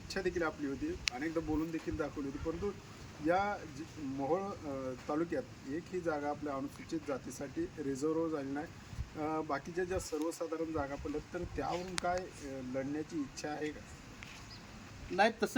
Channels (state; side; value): identical; both; correlation 1.00